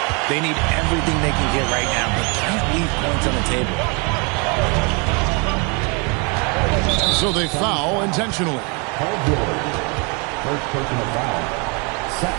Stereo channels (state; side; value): quieter; left; 32.6 dB